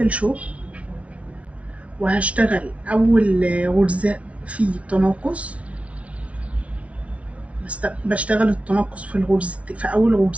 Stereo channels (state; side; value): late; left; 0.064 ms